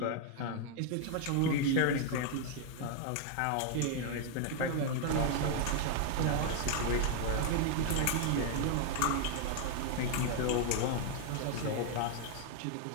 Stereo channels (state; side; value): different; both; correlation 0.00